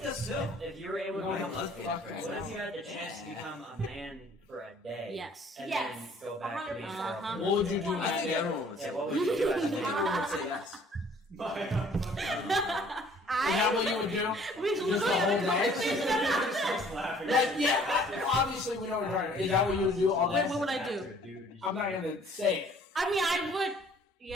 does too. If you were able to Why become a lesbian? Fuck what if you had the chance to become a man for a day? Yes. And Yes, then go back to being a 100%. girl? Uh-huh. What would you do in I that think day? everyone would Yeah, say. what would you do I as a think man? everyone would say yes. Is that what you would do? We Just the whole day? Like, yeah, obviously we know what you're talking about. Is that what you would do all day? Wait, what would I do? I'm not gonna say it. I mean, I would.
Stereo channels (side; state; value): both; normal; correlation 0.56